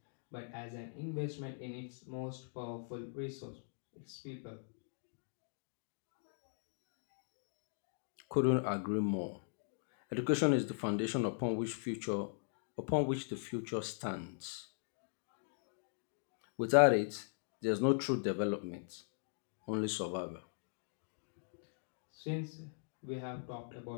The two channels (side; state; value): right; silent; digital silence